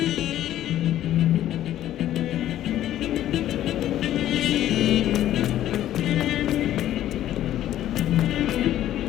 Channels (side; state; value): right; quieter; 12.6 dB